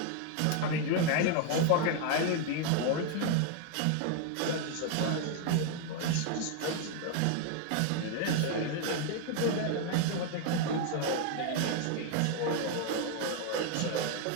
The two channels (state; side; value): different; both; correlation 0.01